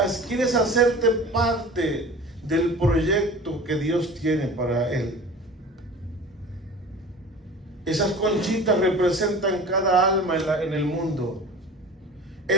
hacerte parte del proyecto que Dios tiene para él? Esas conchitas representan cada alma en el mundo.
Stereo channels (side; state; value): both; normal; correlation 0.39